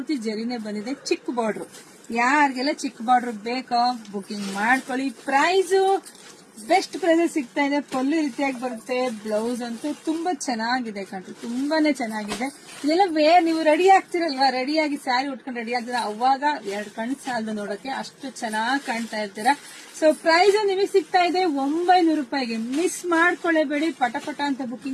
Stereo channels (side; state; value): both; identical; correlation 1.00